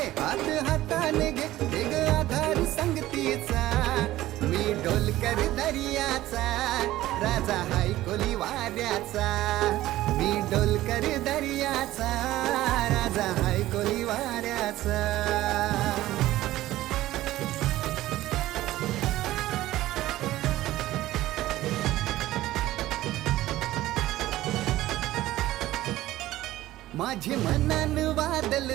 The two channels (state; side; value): quieter; left; 15.6 dB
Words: हात हाताने घे ग आधार संगतीचा. मी डोलकर दर्याचा राजा हायकोली वाऱ्याचा, मी डोलकर दर्याचा राजा हायकोली वाऱ्याचा. माझे मनान वादल